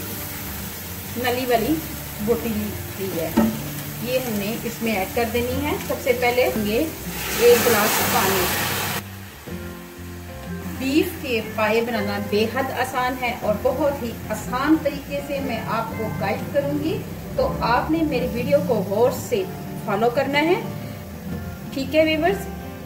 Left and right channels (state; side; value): identical; both; correlation 1.00